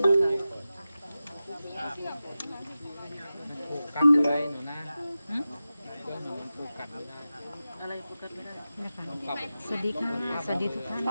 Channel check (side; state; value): both; inverted; correlation -0.94